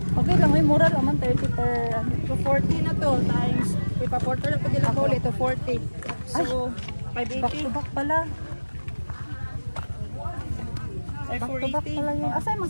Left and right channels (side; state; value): both; inverted; correlation -1.00